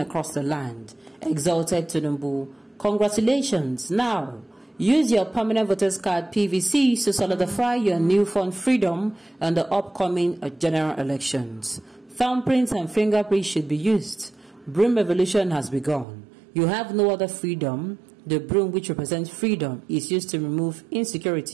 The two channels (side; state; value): left; drops out; at 16.1 s